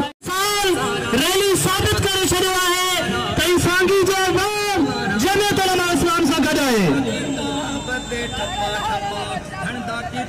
रैली साबित करे छड़ियो है कई सांगी जो जमियत उलमा इस्लाम सां गॾु आहे।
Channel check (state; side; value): identical; both; correlation 1.00